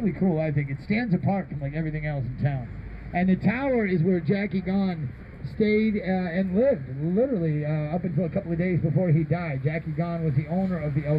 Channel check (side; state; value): both; identical; correlation 1.00